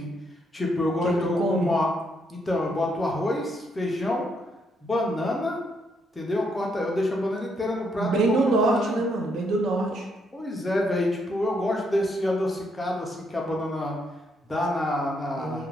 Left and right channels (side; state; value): both; normal; correlation 0.75